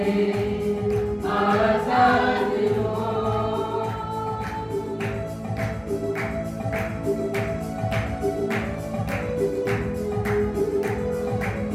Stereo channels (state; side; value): identical; both; correlation 1.00